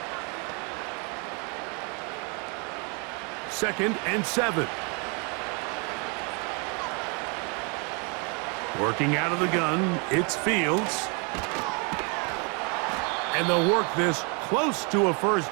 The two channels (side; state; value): left; quieter; 34.0 dB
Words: Second and 7. Working out of the gun, it's Fields. And they'll work this close to a